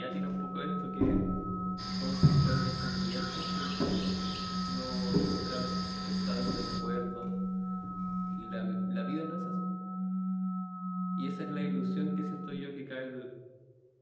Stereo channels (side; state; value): both; identical; correlation 1.00